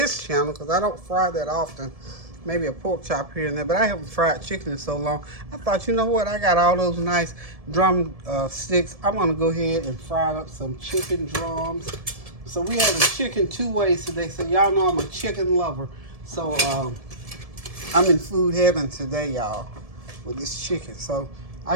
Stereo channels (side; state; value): left; late; 1.7 ms